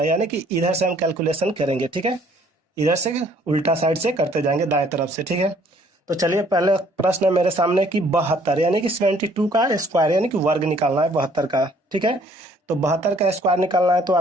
है, यानी कि इधर से हम कैलकुलेशन करेंगे, ठीक है। इधर से उल्टा साइड से करते जाएंगे दाएं तरफ से, ठीक है। तो चलिए पहले प्रश्न है मेरे सामने कि 72 यानी कि 72 का स्क्वायर यानी कि वर्ग निकालना है 72 का, ठीक है। तो 72 का स्क्वायर निकालना है। तो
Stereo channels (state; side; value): normal; both; correlation 0.60